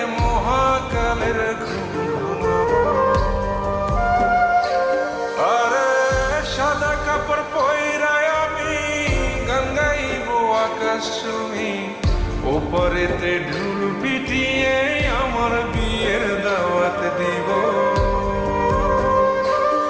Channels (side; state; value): both; identical; correlation 1.00